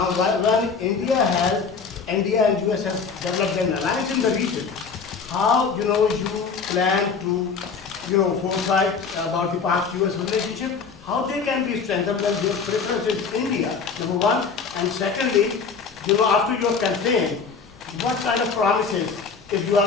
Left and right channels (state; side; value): quieter; right; 5.4 dB